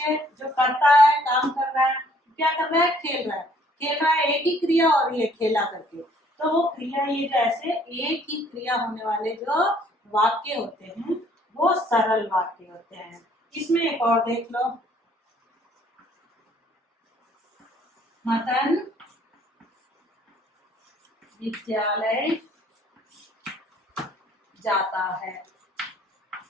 जो करता है, काम कर रहा है। क्या कर रहा है? खेल रहा है। खेल रहा है एक ही क्रिया, और ये खेला करके, तो वो क्रिया, ये जैसे एक ही क्रिया होने वाले जो वाक्य होते हैं वो सरल वाक्य होते हैं। इसमें एक और देख लो, मदन विद्यालय जाता है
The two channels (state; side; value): normal; both; correlation 0.61